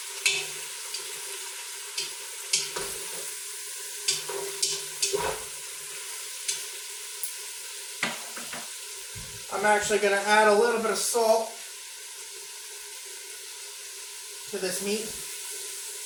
I'm actually going to add a little bit of salt to this meat.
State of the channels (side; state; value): both; identical; correlation 1.00